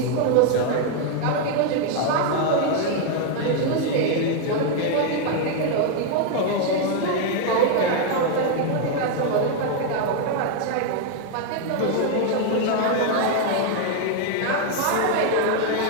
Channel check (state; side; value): different; both; correlation 0.00